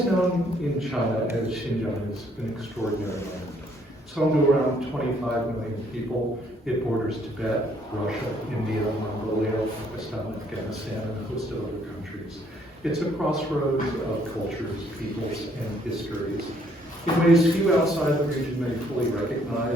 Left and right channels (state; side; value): normal; both; correlation 0.66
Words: known in China as Xinjiang is an extraordinary land. It's home to around 25 million people. It borders Tibet, Russia, India, Mongolia, Pakistan, Afghanistan, and a host of other countries. It's a crossroads of cultures, peoples, and histories. In ways few outside the region may fully